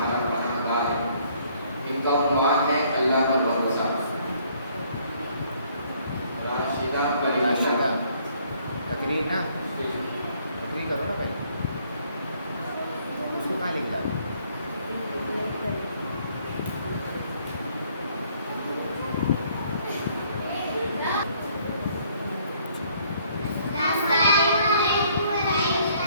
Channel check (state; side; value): inverted; both; correlation -0.64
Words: पनाहगाह है। इनका उन्वान है अल्लाह पर भरोसा। राशिदा करीमुल्लाह तकरीर ना तकरीर करो ना भाई, उसको कहाँ लिख डालो।